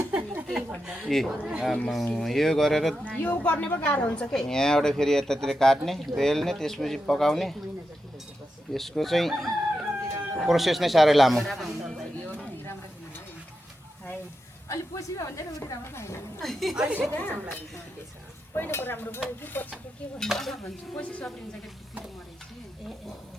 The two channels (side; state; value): both; normal; correlation 0.88